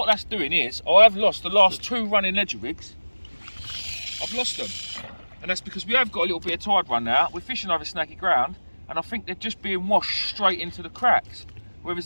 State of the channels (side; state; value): both; inverted; correlation -1.00